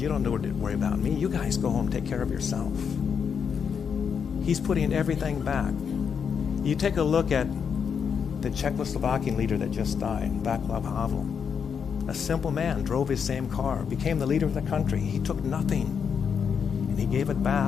you don't need to worry about me. You guys go home, take care of yourself. He's putting everything back. You take a look at the Czechoslovakian leader that just died, Václav Havel. A simple man, drove his same car, became the leader of the country. He took nothing, and he gave it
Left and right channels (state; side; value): quieter; right; 6.8 dB